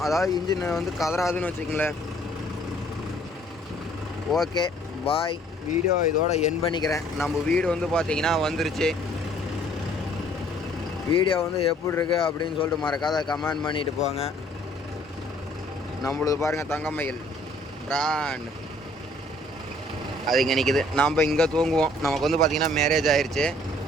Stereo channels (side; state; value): both; normal; correlation 0.59